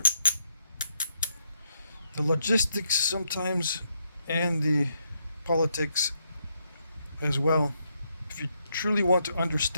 the logistics sometimes, and the politics as well. If you truly want to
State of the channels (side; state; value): both; inverted; correlation -0.77